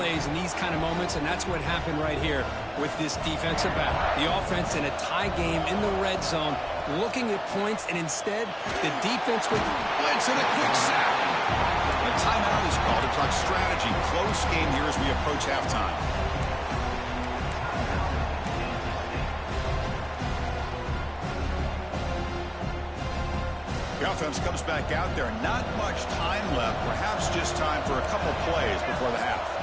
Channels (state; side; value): identical; both; correlation 1.00